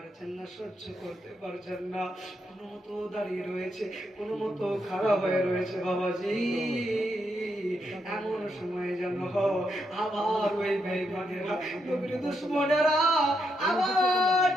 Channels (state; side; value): normal; both; correlation 0.80